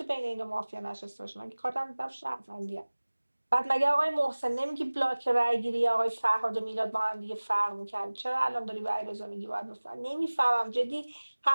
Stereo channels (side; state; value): both; inverted; correlation -1.00